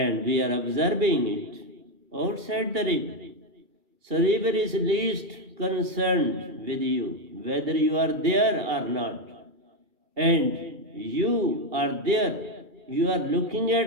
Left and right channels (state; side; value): late; left; 2.3 ms